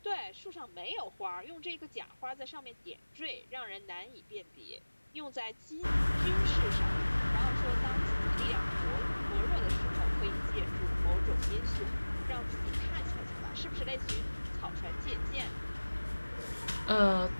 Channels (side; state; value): both; inverted; correlation -1.00